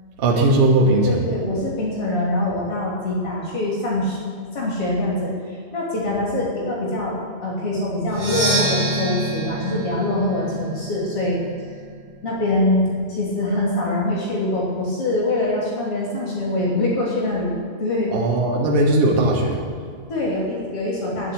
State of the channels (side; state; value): left; late; 2.2 ms